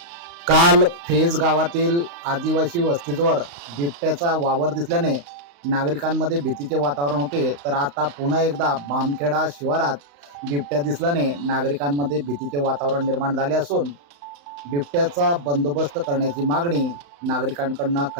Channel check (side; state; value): left; late; 35 ms